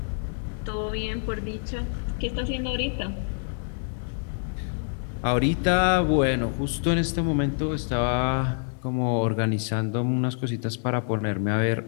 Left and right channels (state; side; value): silent; right; 61 dB below the other